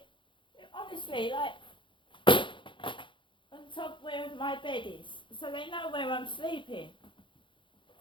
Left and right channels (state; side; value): late; right; 0.24 ms